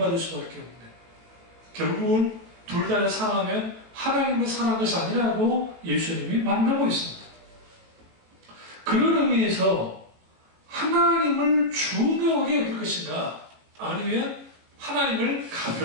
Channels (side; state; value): left; late; 18 ms